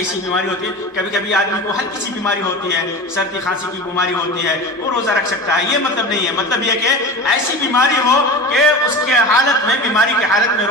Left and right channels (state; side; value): normal; both; correlation 0.30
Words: بیماری ہوتی ہے، کبھی کبھی آدمی کو ہلکی سی بیماری ہوتی ہے، سردی کھانسی کی بیماری ہوتی ہے، وہ روزہ رکھ سکتا ہے. یہ مطلب نہیں ہے. مطلب یہ کہ ایسی بیماری ہو کہ اس کے حالت میں، بیماری کی حالت میں